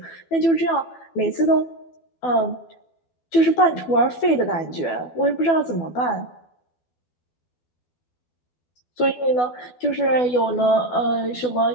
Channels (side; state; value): right; late; 12 ms